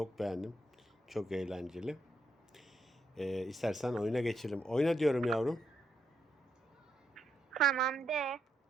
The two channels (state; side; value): normal; both; correlation 0.79